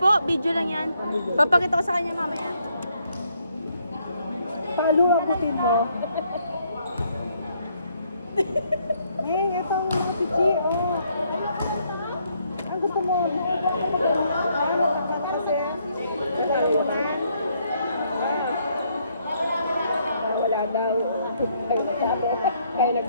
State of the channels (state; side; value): inverted; both; correlation -0.71